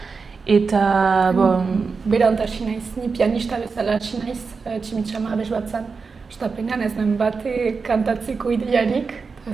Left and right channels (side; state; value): left; quieter; 4.9 dB